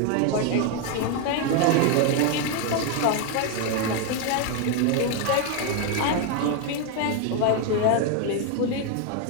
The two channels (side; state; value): both; different; correlation 0.01